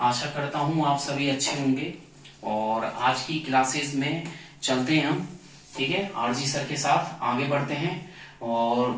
करता हूँ आप सभी अच्छे होंगे। और आज की क्लासेस में चलते हैं हम, ठीक है। आरजी सर के साथ आगे बढ़ते हैं।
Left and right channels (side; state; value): both; identical; correlation 1.00